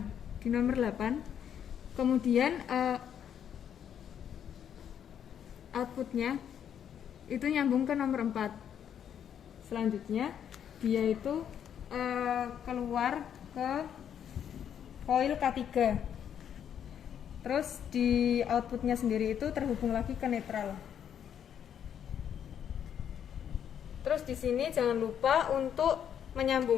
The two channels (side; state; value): right; quieter; 9.0 dB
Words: kemudian outputnya itu nyambung ke nomor 4. Selanjutnya dia itu keluar ke coil K3. Terus di outputnya sendiri itu terhubung lagi ke netral. Terus di sini jangan lupa untuk